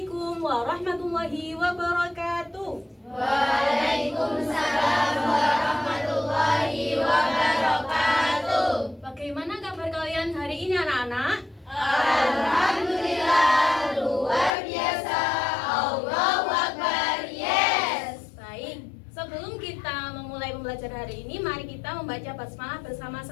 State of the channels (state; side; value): drops out; right; at 14.6 s